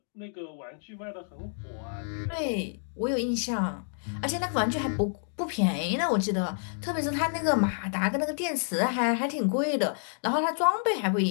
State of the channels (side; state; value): right; silent; digital silence